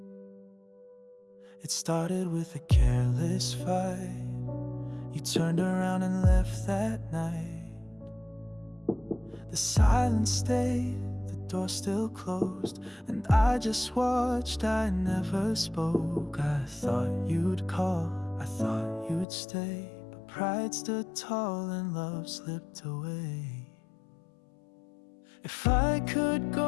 It started with a careless fight. You turned around and left that night. The silence stayed, the door still closed, and I just watched, I never spoke. I thought you'd call, I thought you'd stay, but pride stood tall and love slipped away. If I could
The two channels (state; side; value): drops out; right; at 19.2 s